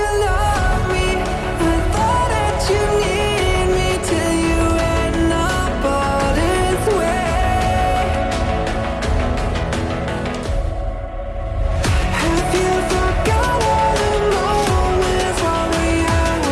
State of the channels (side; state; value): both; identical; correlation 1.00